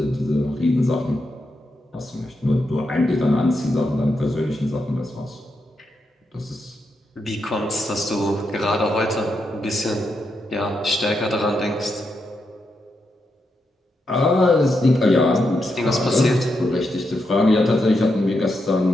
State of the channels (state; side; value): normal; both; correlation 0.84